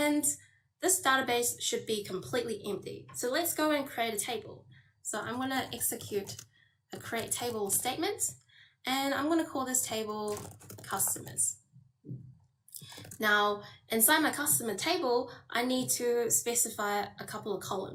this database should be completely empty. So let's go and create a table. So I'm going to execute a create table statement, and I'm going to call this table customers. Now, inside my customer table, I need to specify a couple of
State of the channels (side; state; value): both; identical; correlation 1.00